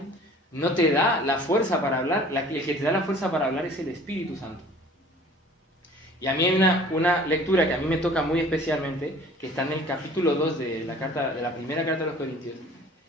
no te da la fuerza para hablar. El que te da la fuerza para hablar es el Espíritu Santo. Y a mí hay una lectura que a mí me toca muy especialmente, que está en el capítulo 2 de la primera carta a los Corintios,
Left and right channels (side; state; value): both; normal; correlation 0.49